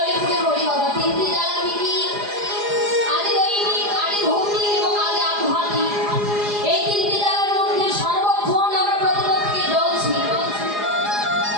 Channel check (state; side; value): late; left; 4.9 ms